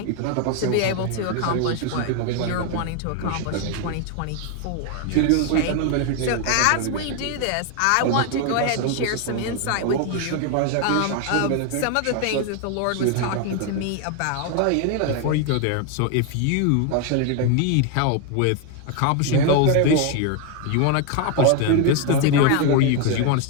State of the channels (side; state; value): both; different; correlation 0.01